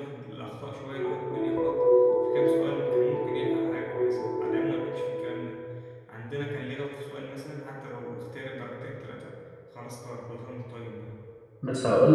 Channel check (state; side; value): identical; both; correlation 1.00